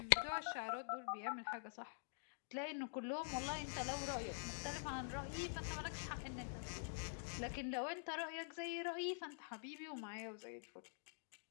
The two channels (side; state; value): right; silent; digital silence